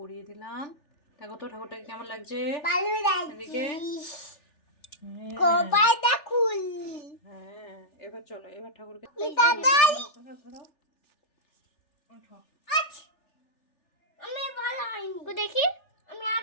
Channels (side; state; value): right; late; 3.4 ms